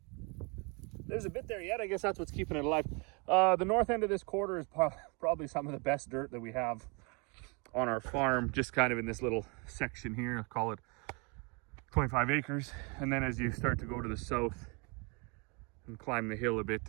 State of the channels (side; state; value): left; quieter; 32.0 dB